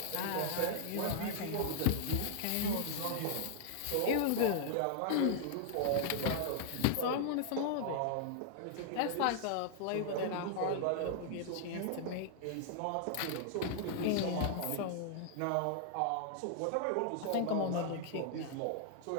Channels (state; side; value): different; both; correlation -0.01